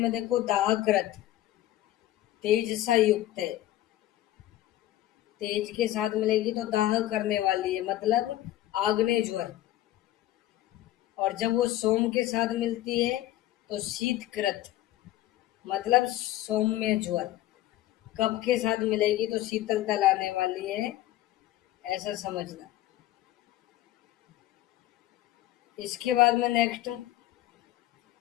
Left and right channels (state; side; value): quieter; right; 14.6 dB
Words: में देखो दाहकृत, तेज सा युक्त है। तेज के साथ मिलेगी तो दाह करने वाली है, मतलब आग्नेय ज्वर। और जब वो सोम के साथ मिलती है तो शीतकृत, मतलब सौम्य ज्वर। कब के साथ मिलेगी तो शीतलता लाने वाली है, ऐसा समझना। इसके बाद में नेक्स्ट